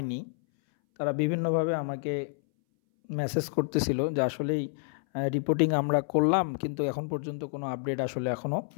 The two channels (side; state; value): right; silent; 59 dB below the other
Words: তারা বিভিন্নভাবে আমাকে মেসেজ করতেছিল যে আসলেই রিপোর্টিং আমরা করলাম কিন্তু এখন পর্যন্ত কোনো আপডেট আসলে এখনও